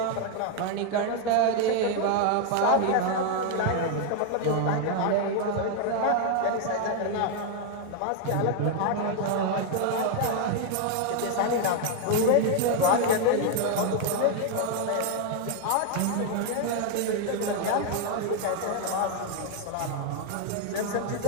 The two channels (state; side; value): different; both; correlation 0.00